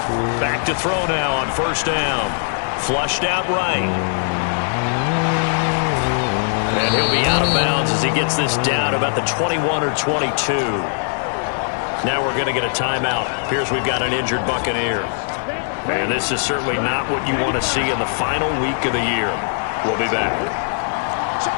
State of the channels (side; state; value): right; silent; digital silence